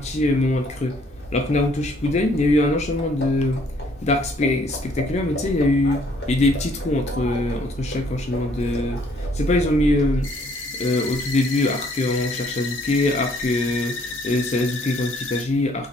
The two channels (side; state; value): both; normal; correlation 0.63